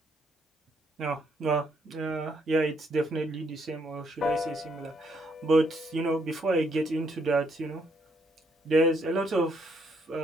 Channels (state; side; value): normal; both; correlation 0.72